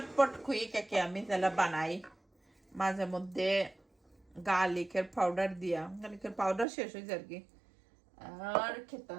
খুই কেকে আমি তাহলে বানাই মাঝে মধ্যে গার্লিকের পাউডার দিয়া গার্লিকের পাউডার শেষ হয়ে যায় আর কি আর খেতা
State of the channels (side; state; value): left; drops out; at 6.7 s